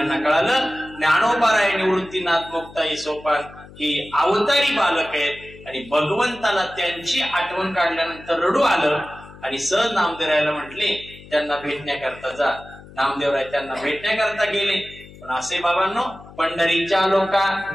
कळालं ज्ञानोबाराय निवृत्तीनाथ मुक्ताई सोपान ही अवतारी बालक आहेत आणि भगवंताला त्यांची आठवण काढल्यानंतर रडू आलं आणि सहज नामदेवरायला म्हटले त्यांना भेटण्याकरता जा. नामदेवराय त्यांना भेटण्याकरता गेले. पण असे बाबांनो, पंढरीच्या लोका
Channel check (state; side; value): noise; left; hum, 19 dB below the sound